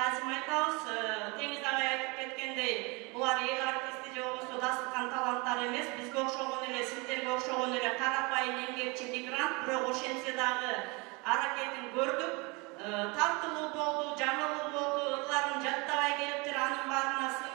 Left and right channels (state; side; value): quieter; left; 27.8 dB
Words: айтабыз. Теңиз агай айтып кеткендей, булар эл артисти же болбосо дасыккан таланттар эмес, бизге окшогон эле, сиздерге окшогон эле карапайым эмгекчи мигрант, бирок ошентсе дагы аракетин көрдүк. Тартылуу болду, жаңылуу болду, ырларын жаттабай келиптир, анын баарына